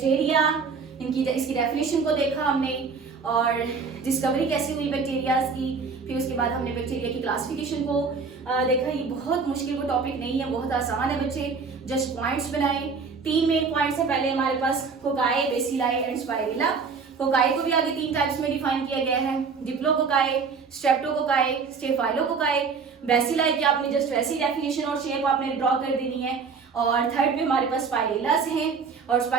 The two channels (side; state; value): left; quieter; 5.2 dB